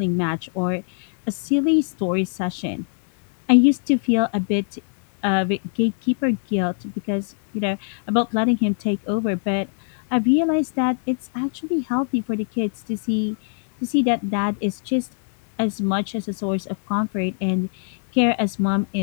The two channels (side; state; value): right; silent; 64 dB below the other